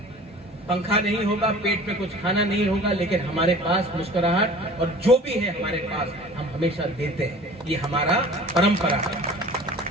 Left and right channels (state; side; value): normal; both; correlation 0.44